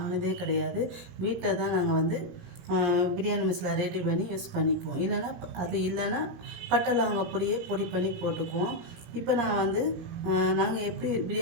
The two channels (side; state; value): left; late; 17 ms